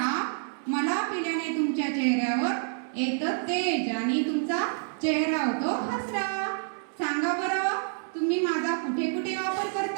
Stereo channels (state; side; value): silent; left; digital silence